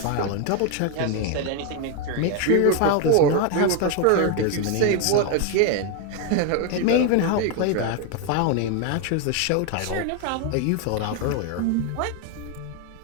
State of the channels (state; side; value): different; both; correlation 0.01